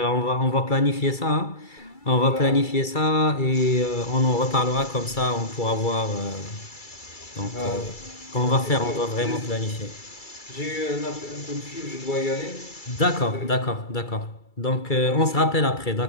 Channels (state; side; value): late; right; 2.3 ms